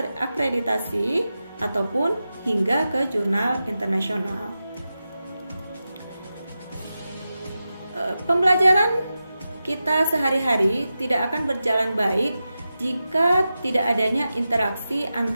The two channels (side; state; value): both; inverted; correlation -0.92